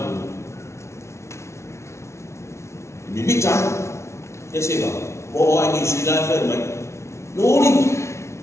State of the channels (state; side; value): late; right; 0.13 ms